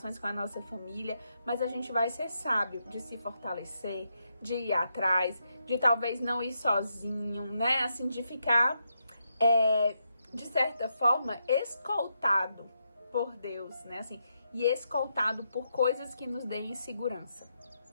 com a nossa família, mas a gente vai ser sábio de se fortalecer, de ir atrás, de talvez não ir sozinho, né, assim, de ficar, de certa forma, escoltado por Deus, né, assim, e escoltado por coisas que nos deem segurança.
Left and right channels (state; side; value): inverted; both; correlation -0.82